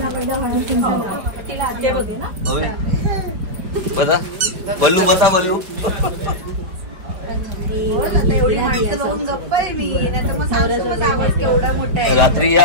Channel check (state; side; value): late; left; 4.9 ms